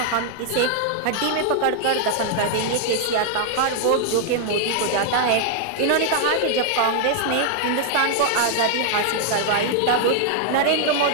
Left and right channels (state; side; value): different; both; correlation -0.01